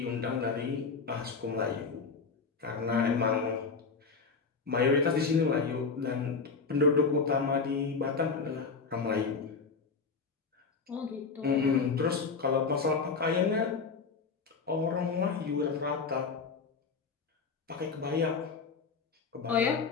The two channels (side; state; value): right; quieter; 4.9 dB